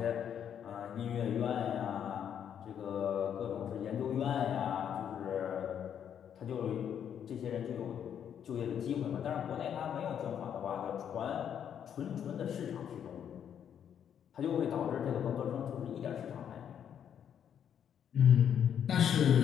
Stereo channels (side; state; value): right; quieter; 8.8 dB